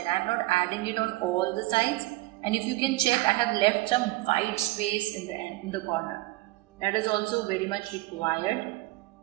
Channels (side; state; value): left; quieter; 20.0 dB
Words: I am not adding it on all the sides. And if you can check, I have left some white space in the end, in the corner. That is also very much required,